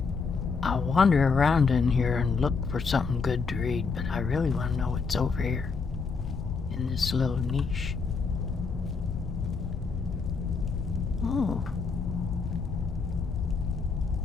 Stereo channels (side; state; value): right; quieter; 4.9 dB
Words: around in here and look for something good to read, but I really want to know what's over here in this little niche. Oh.